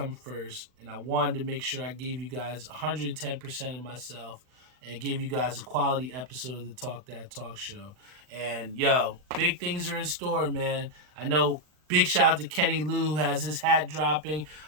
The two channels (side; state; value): left; late; 39 ms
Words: first. And I wanted to make sure I gave you guys 110% of myself and gave you guys a quality episode of the Talk That Talk show. And, yo, big things are in store, man. I know. Big shout out to Kenny Lou, who has his hat dropping.